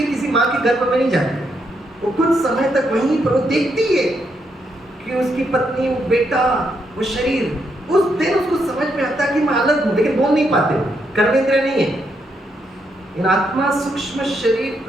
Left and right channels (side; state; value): both; normal; correlation 0.78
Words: किसी माँ के गर्भ में नहीं जाती। वो कुछ समय तक वहीं पर वो देखती है कि उसकी पत्नी, वो बेटा, वो शरीर, उस दिन उसको समझ में आता है कि मैं अलग हूं, लेकिन बोल नहीं पाते, कर्मेंद्रिय नहीं है। इन आत्मा सूक्ष्म शरीर